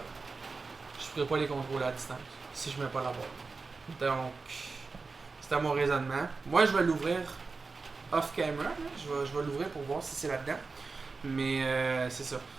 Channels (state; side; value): quieter; left; 4.2 dB